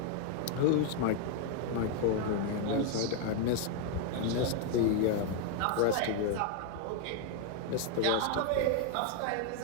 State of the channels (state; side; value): different; both; correlation 0.00